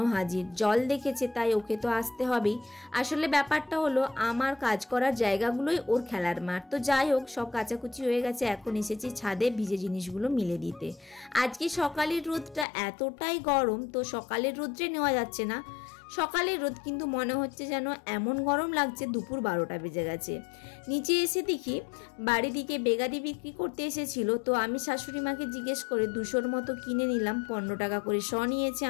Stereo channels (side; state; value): right; drops out; at 12.7 s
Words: হাজির, জল দেখেছে তাই ওকে তো আসতে হবেই। আসলে ব্যাপারটা হলো আমার কাজ করার জায়গাগুলোই ওর খেলার মাঠ। তো যাই হোক, সব কাচাকুচি হয়ে গেছে, এখন এসেছি ছাদে ভিজে জিনিসগুলো মিলে দিতে। আজকে সকালের রোদটা এতটাই গরম, তো সকালের রোদ্রে নেওয়া যাচ্ছে না। সকালের রোদ কিন্তু মনে হচ্ছে যেন এমন গরম লাগছে দুপুর 12টা বেজে গেছে। নিচে এসে দেখি বাড়ি দিকে বেগাদি বিক্রি করতে এসেছিল, তো আমি শাশুড়ি মাকে জিজ্ঞেস করে 200-র মতো কিনে নিলাম। 15 টাকা করে শ নিয়েছে